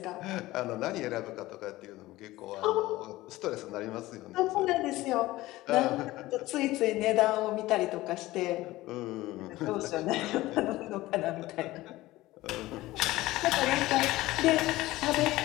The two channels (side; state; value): right; quieter; 17.7 dB